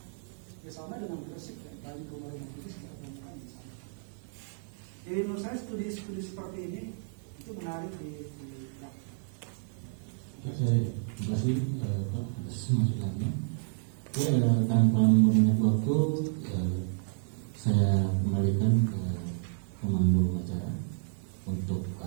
Ya sama dengan Gresik ya, dari rumah-rumah Bugis kita temukan di sana. Jadi menurut saya studi seperti ini itu menarik di Terima kasih Pak atas masukannya. Tanpa membanyak waktu, saya kembalikan ke pemandu acara untuk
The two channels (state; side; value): silent; left; digital silence